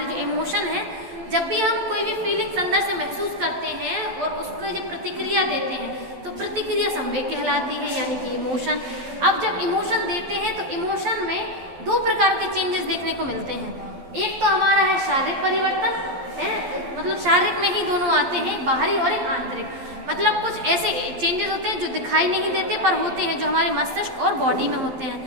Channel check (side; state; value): left; late; 12 ms